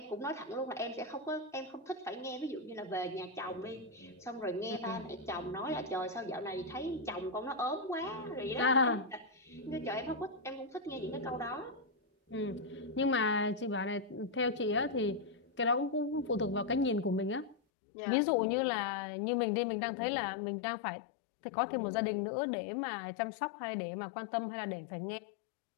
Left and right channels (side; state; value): right; drops out; at 17.6 s